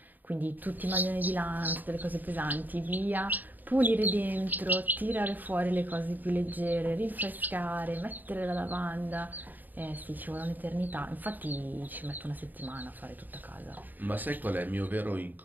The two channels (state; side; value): late; left; 0.087 ms